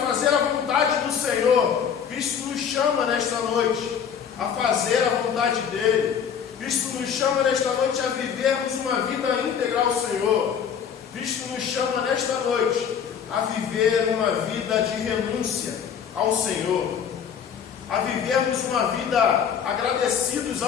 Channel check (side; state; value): right; quieter; 7.7 dB